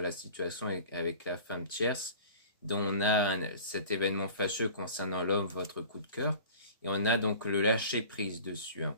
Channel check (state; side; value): inverted; both; correlation -0.42